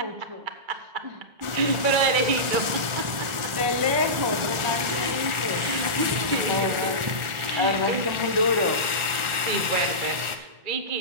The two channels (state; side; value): late; left; 1.4 ms